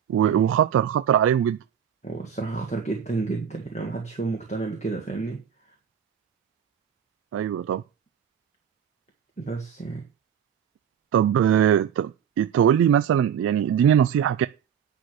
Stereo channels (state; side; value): quieter; left; 8.5 dB